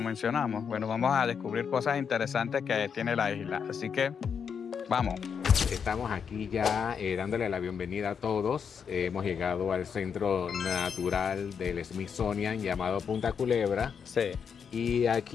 mencionamos? Bueno, vamos a descubrir cosas interesantes que tiene la isla, así que vamos. Estamos aquí ya dándole la bienvenida a todos. Hemos llegado al centro natural del Smithsonian llamado Punta Culebra. Sí. Y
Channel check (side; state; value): right; quieter; 6.8 dB